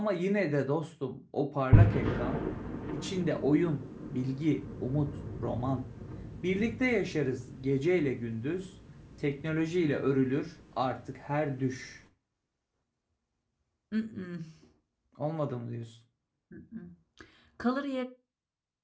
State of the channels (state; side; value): identical; both; correlation 1.00